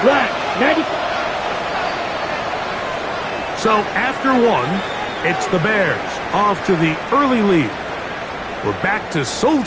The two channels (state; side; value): identical; both; correlation 1.00